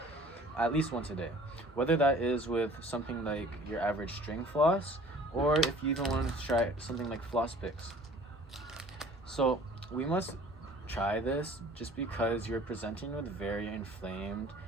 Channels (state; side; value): normal; both; correlation 0.50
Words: at least once a day. Whether that is with something like your average string floss, or if you even want to try something like floss picks. So we must try this just because you're presenting with very inflamed